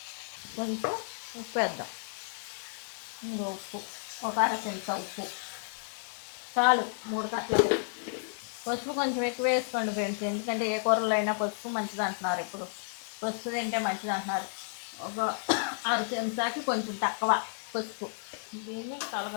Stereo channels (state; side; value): silent; right; 56 dB below the other